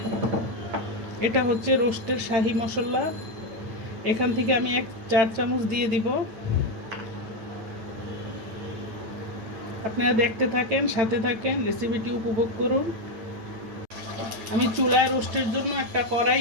এটা হচ্ছে রোস্টের শাহি মশলা। এখান থেকে আমি 4 চামচ দিয়ে দিব। আপনারা দেখতে থাকেন, সাথে থাকেন, রেসিপিটি উপভোগ করুন। আমি চুলায় রোস্টের জন্য একটা কড়াই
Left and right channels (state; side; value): late; left; 9.1 ms